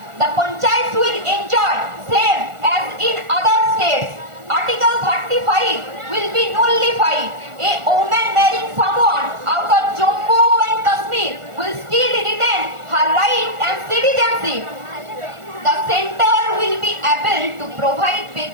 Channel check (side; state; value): left; late; 1.4 ms